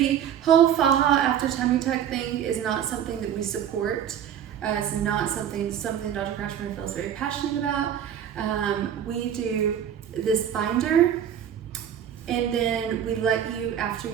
whole faja after tummy tuck thing is not something that we support. It's not something Dr. Kratschmer feels very passionate about. We do this binder, and then we let you, after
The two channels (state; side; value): quieter; left; 9.4 dB